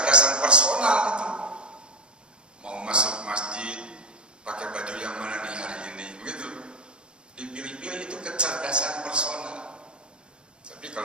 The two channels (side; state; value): left; late; 0.053 ms